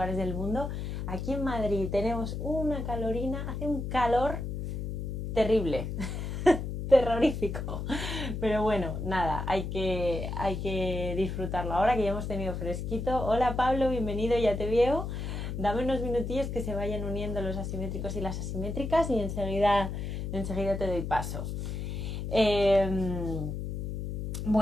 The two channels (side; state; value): left; noise; hum, 4 dB below the sound